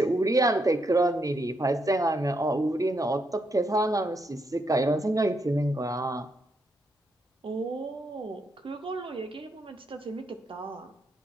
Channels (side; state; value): both; normal; correlation 0.78